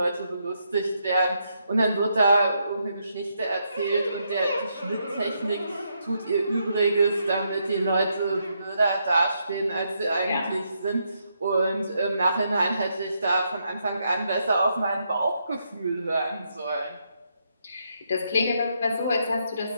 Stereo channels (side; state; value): both; inverted; correlation -0.78